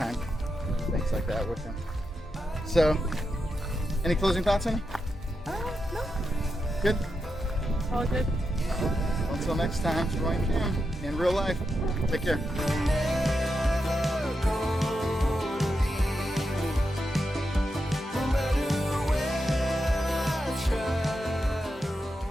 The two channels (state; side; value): normal; both; correlation 0.87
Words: doing things like that with him. So, any closing thoughts, honey? No. Good? All good. Until next time, join Kim in real life. Take care.